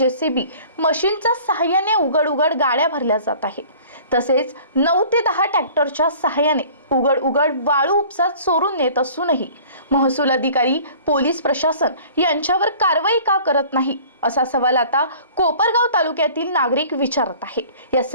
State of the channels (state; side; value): inverted; both; correlation -0.48